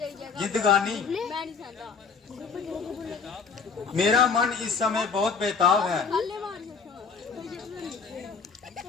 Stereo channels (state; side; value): quieter; right; 5.4 dB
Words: जिंदगानी मेरा मन इस समय बहुत बेताब है।